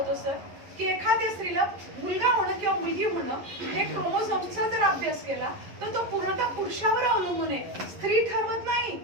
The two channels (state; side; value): late; left; 11 ms